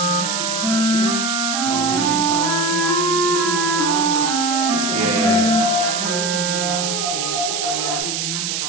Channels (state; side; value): noise; right; hiss, 1 dB below the sound